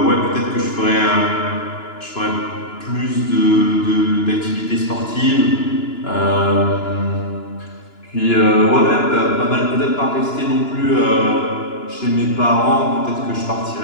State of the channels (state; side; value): late; right; 2.9 ms